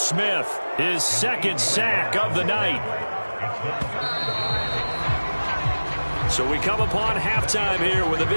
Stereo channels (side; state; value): both; inverted; correlation -1.00